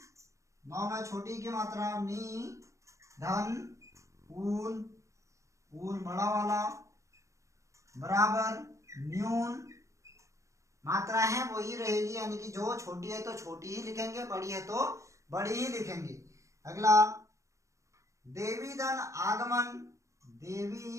नौ में छोटी की मात्रा नी धन ऊन, ऊन बड़ा वाला बराबर न्यून, मात्रा है वही रहेगी, यानी कि जो छोटी है तो छोटी ही लिखेंगे, बड़ी है तो बड़ी ही लिखेंगे। अगला देवी धन आगमन,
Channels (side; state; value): left; late; 0.15 ms